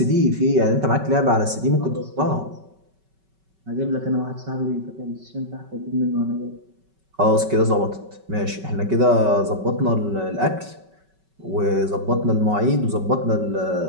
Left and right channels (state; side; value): late; left; 5.3 ms